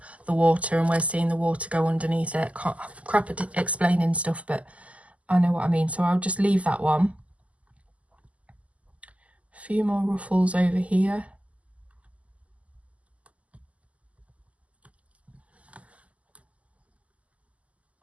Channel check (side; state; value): left; late; 0.068 ms